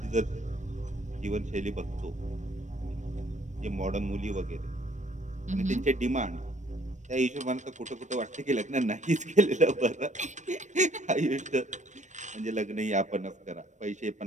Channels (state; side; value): late; left; 0.35 ms